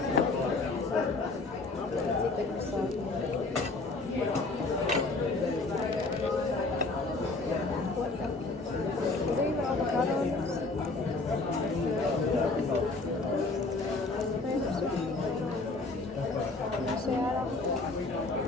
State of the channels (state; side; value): quieter; right; 3.4 dB